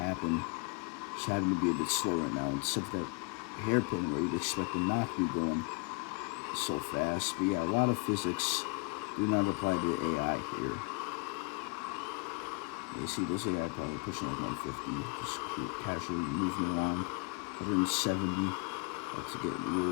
to be a bit slow right now. Except that hairpin where you'd expect them not to be going so fast. But yeah, a lot of physics do not apply to the AI here. You see those AI probably pushing like 150, just casually moving along. 170, let's get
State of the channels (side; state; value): right; quieter; 32.2 dB